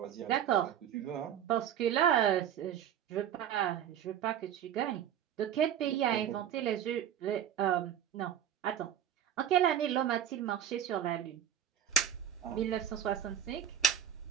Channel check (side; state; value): left; quieter; 9.8 dB